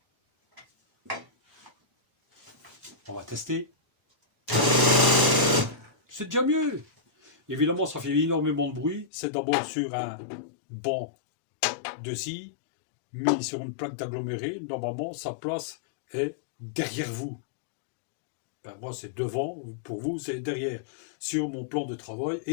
On va tester. C'est déjà mieux. Évidemment, ça fait énormément de bruit. C'est d'abord sur un banc de scie, mis sur une plaque d'aggloméré. Normalement, sa place est derrière vous. Ben, moi, c'est devant. Pour vous, c'est derrière. Sur mon plan de travail,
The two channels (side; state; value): right; drops out; at 9.1 s